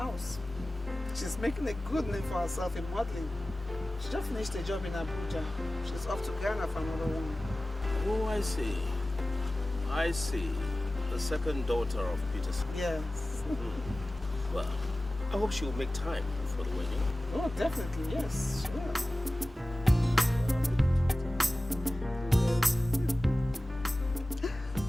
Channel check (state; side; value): normal; both; correlation 0.96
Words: She's making a good name for herself in modeling. She just finished a job in Abuja. She's off to Ghana for another one. Oh, I see. I see. The second daughter of Peterson. Yes. Well, I hope she will make time for the wedding. Oh, definitely, yes. Sure.